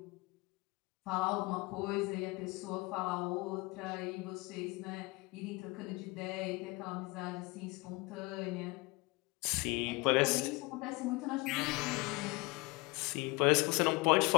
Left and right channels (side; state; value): right; quieter; 24.3 dB